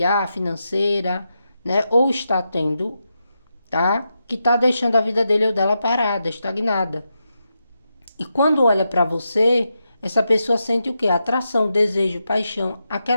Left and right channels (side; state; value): both; inverted; correlation -0.86